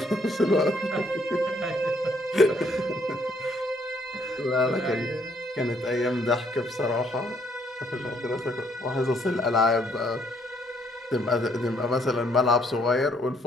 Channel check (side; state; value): both; normal; correlation 0.68